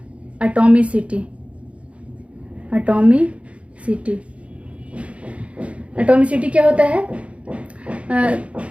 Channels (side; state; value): left; late; 0.062 ms